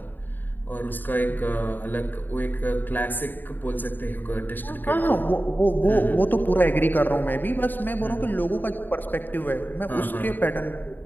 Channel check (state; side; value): late; right; 0.090 ms